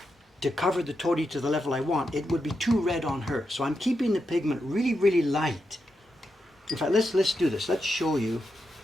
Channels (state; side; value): normal; both; correlation 0.86